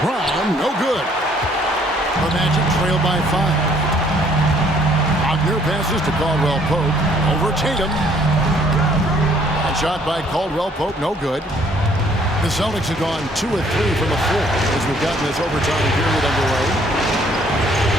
no good. The Magic trail by 5. Wagner passes to Caldwell Pope. Over Tatum. Shot by Caldwell Pope, no good. The Celtics have gone 2 of 3 from the floor as we've gotten this overtime period underway.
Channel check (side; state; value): both; normal; correlation 0.62